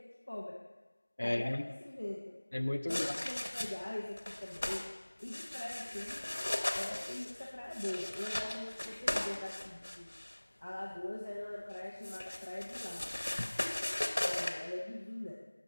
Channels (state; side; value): inverted; both; correlation -1.00